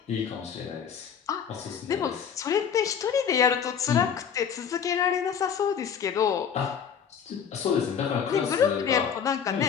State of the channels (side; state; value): right; quieter; 7.6 dB